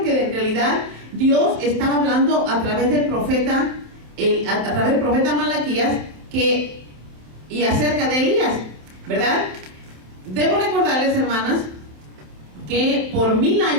que en realidad Dios estaba hablando a través del profeta, a través del profeta Malaquías, y acerca de Elías, ¿verdad? Debo recordarles, hermanas, que por 1000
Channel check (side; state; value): left; late; 27 ms